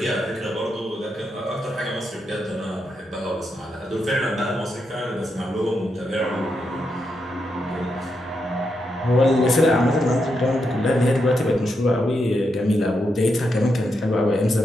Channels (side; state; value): both; normal; correlation 0.83